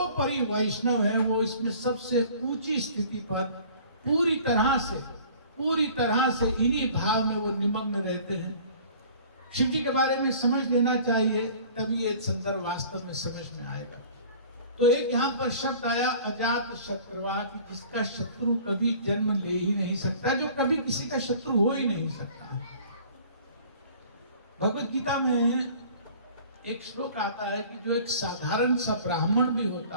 वैष्णव है, वो इसमें सबसे ऊंची स्थिति पर पूरी तरह से इन्हीं भाव में वो निमग्न रहते हैं। शिव जी के बारे में समझ लेना चाहिए, तभी ये संदर्भ वास्तव में समझ में आएगा। तो एक यहाँ पर शब्द आया अजात शत्रुवा, कि जिसका शत्रु कभी जन्म ले ही नहीं सकता, जो कभी किसी का शत्रु हो ही नहीं सकता। भगवत गीता में एक श्लोक आता है कि जो एक साधारण सा ब्राह्मण भी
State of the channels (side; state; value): both; inverted; correlation -0.48